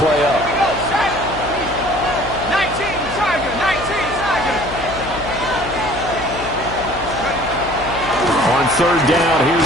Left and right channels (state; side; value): noise; left; hum, 11 dB below the sound